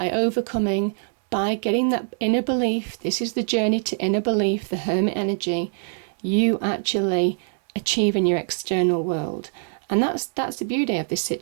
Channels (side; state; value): left; silent; digital silence